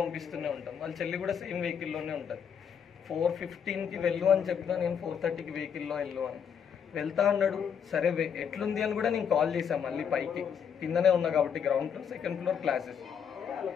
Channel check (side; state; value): right; quieter; 7.6 dB